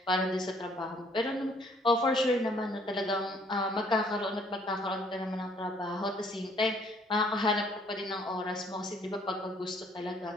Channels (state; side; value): normal; both; correlation 0.62